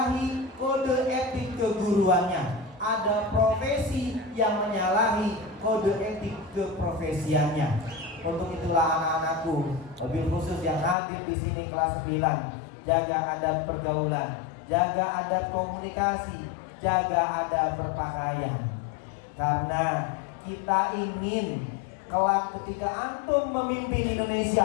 kode etik keguruannya, ada profesi yang menyalahi kode etik keprofesiannya. Untuk itulah anak-anakku, lebih khusus yang hadir di sini kelas 9, jaga adab pergaulan, jaga adab komunikasi, jaga adab berpakaian. Karena kita ingin kelak ketika antum memimpin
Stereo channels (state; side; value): drops out; right; at 11.0 s